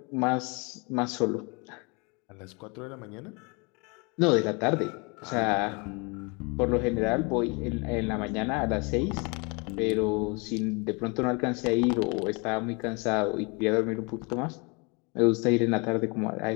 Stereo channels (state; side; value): quieter; right; 30.5 dB